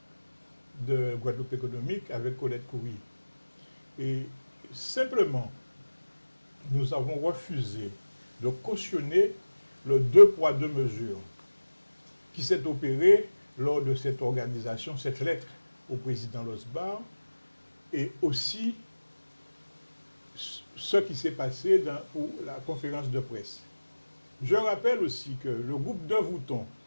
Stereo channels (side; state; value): both; inverted; correlation -1.00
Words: de Guadeloupe économique avec Colette Coury. Et simplement, nous avons refusé de cautionner le 2 poids 2 mesures qui s'est opéré lors de cette organisation, cette lettre au président Losbar, et aussi ce qui s'est passé pour la conférence de presse. Je rappelle aussi que le groupe de Vouton